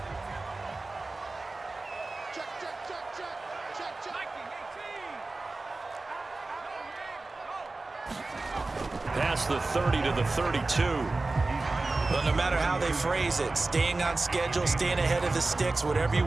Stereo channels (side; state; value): left; quieter; 3.3 dB